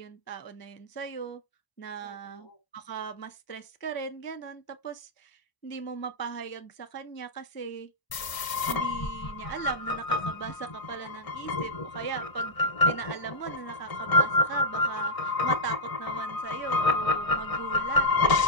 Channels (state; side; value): late; right; 1.0 ms